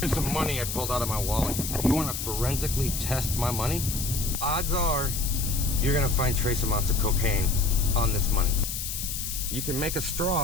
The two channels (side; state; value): left; noise; hiss, 4 dB below the sound